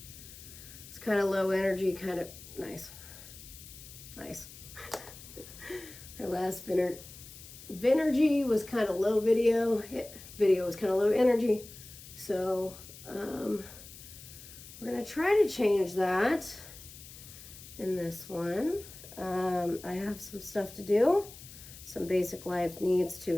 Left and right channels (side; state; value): left; noise; hiss, 16 dB below the sound